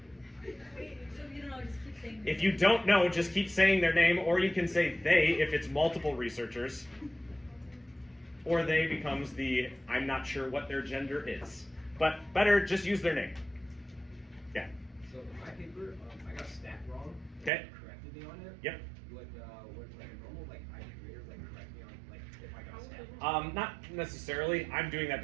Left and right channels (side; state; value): left; drops out; at 17.5 s